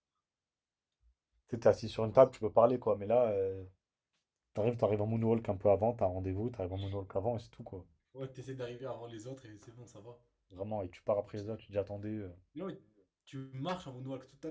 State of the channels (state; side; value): identical; both; correlation 1.00